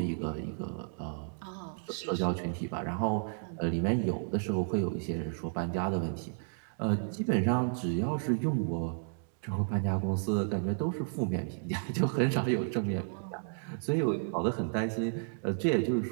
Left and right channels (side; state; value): left; silent; digital silence